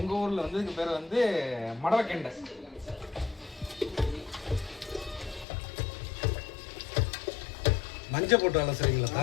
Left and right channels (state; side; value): drops out; right; at 5.5 s